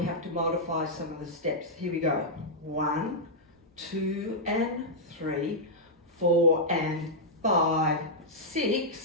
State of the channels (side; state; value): both; normal; correlation -0.08